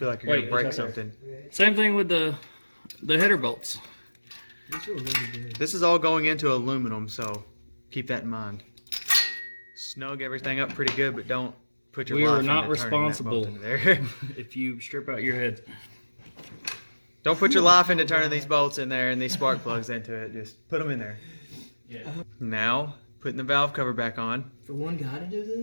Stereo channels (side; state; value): both; inverted; correlation -1.00